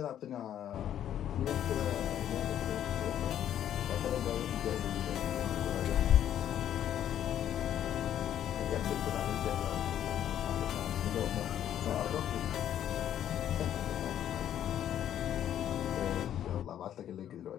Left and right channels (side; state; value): right; quieter; 10.7 dB